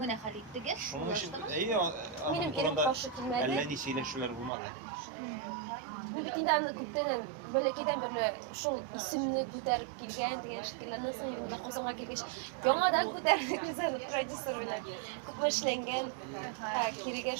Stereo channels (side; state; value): left; drops out; at 4.5 s